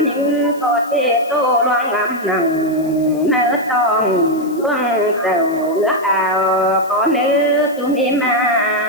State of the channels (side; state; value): left; noise; hiss, 23 dB below the sound